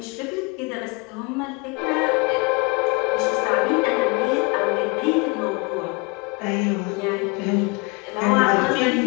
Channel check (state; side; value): quieter; right; 29.3 dB